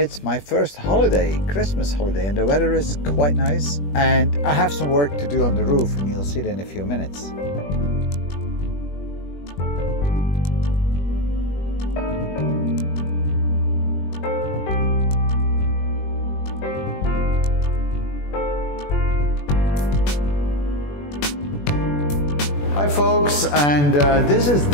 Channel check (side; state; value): right; late; 21 ms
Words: it's my first holiday, Christmas holiday, and the weather is quite nice, and I have some work to do on the roof and you'll see that in a few minutes. Hi folks, and this is